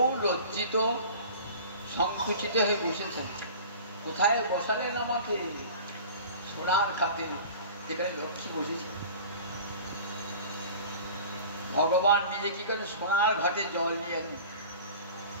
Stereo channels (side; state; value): both; inverted; correlation -0.40